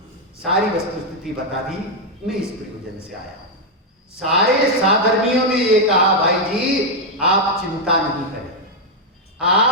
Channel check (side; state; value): both; normal; correlation 0.01